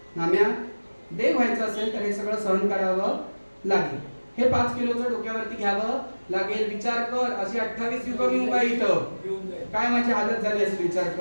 नाम्या, देव व्हायचं असेल तर हे सगळं सहन करावं लागेल. हे 5 किलोचं डोक्यावरती घ्यावं लागेल. विचार कर, अशी 28 युग मी उभा इथं, काय माझी हालत झाली असेल विचार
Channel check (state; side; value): inverted; both; correlation -1.00